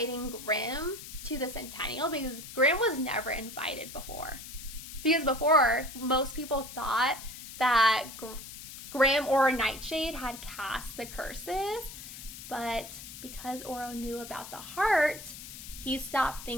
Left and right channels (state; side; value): noise; left; hiss, 12 dB below the sound